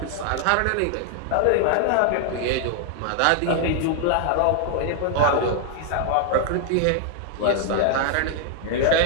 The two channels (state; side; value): different; both; correlation 0.00